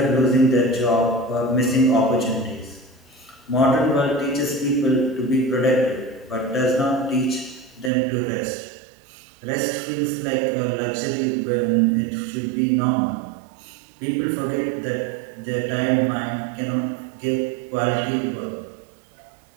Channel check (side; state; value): left; drops out; at 7.9 s